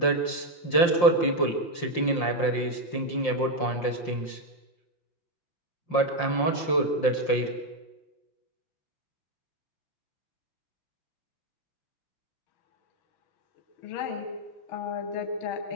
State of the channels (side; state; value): right; late; 5.7 ms